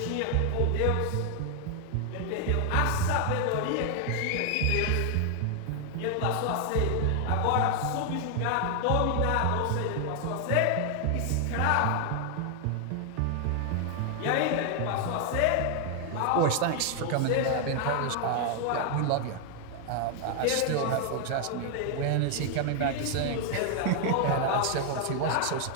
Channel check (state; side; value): different; both; correlation 0.00